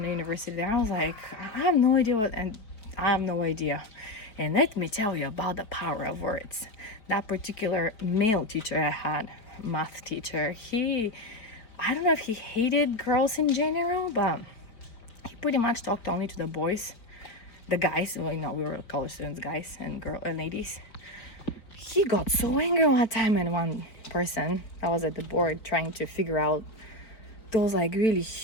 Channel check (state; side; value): late; right; 4.5 ms